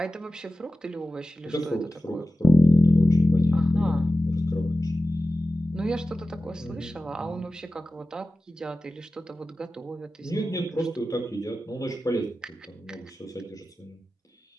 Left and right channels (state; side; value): normal; both; correlation 0.94